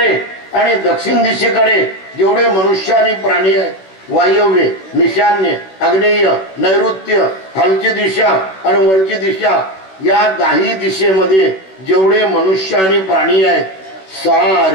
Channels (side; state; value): right; late; 16 ms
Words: आणि दक्षिण दिशेकडे जेवढे मनुष्य आणि प्राणी आहेत, वायव्य, ईशान्य, आग्नेय, नैऋत्य, खालची दिशा आणि वरची दिशा, या 10 दिशेमध्ये जेवढे मनुष्य आणि प्राणी आहेत,